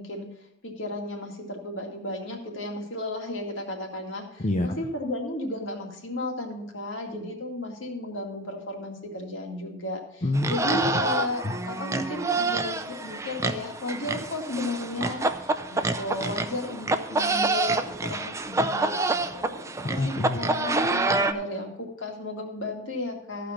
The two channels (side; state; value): both; normal; correlation 0.25